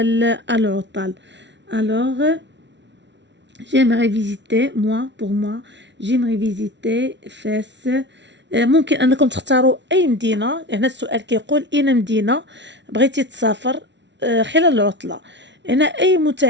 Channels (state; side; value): late; left; 0.51 ms